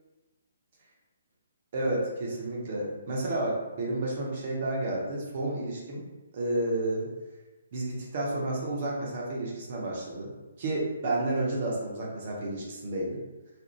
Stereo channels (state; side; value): inverted; both; correlation -0.66